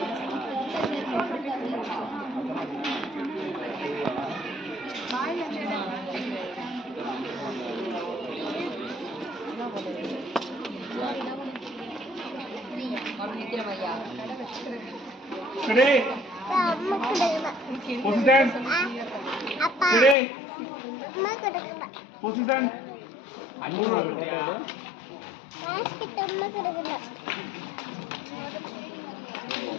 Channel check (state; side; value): drops out; right; at 20.2 s